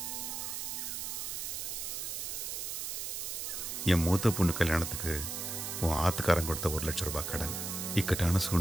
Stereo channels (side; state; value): right; noise; hiss, 4 dB below the sound